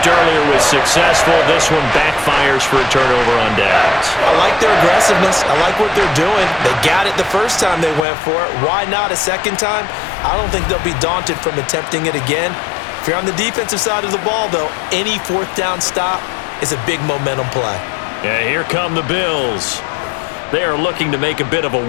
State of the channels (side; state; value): right; drops out; at 8.1 s